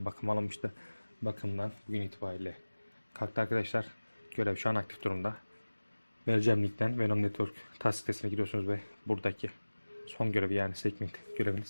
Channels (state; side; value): inverted; both; correlation -1.00